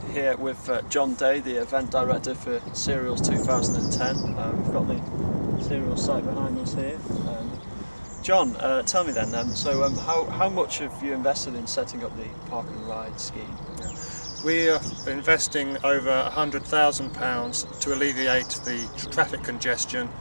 here with John Day, the event director for Cereals 2010. We've got the Cereals site behind us here. John, tell me then, how much have you invested in setting up the park and ride scheme? We are investing over £100,000 to alleviate the traffic congestion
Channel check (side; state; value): both; inverted; correlation -1.00